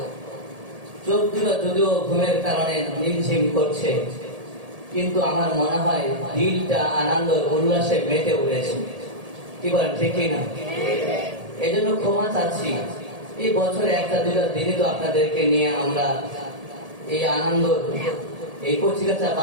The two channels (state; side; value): late; left; 1.8 ms